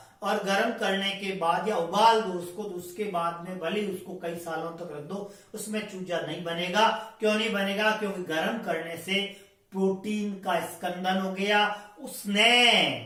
और गर्म करने के बाद या उबाल दो उसको, तो उसके बाद में भले उसको कई सालों तक रख दो, उसमें चूजा नहीं बनेगा। क्यों नहीं बनेगा? क्योंकि गर्म करने से प्रोटीन का स्कंदन हो गया, उसने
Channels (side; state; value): both; identical; correlation 1.00